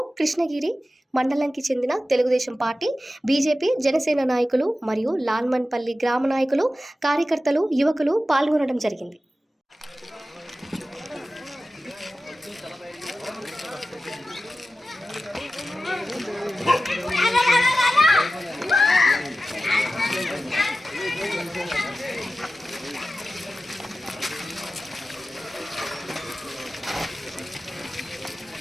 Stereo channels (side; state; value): both; normal; correlation 0.94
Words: కృష్ణగిరి మండలానికి చెందిన తెలుగుదేశం పార్టీ, బీజేపీ, జనసేన నాయకులు మరియు లాల్మన్పల్లి గ్రామ నాయకులు, కార్యకర్తలు, యువకులు పాల్గొనడం జరిగింది.